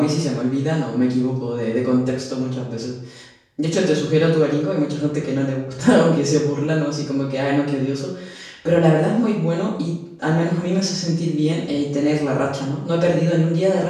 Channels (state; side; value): identical; both; correlation 1.00